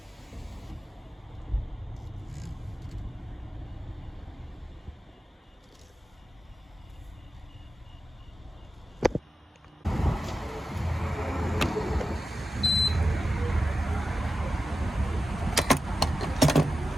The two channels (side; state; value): both; normal; correlation 0.91